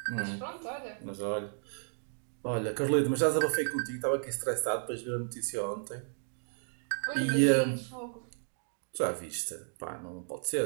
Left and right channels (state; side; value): silent; left; 56 dB below the other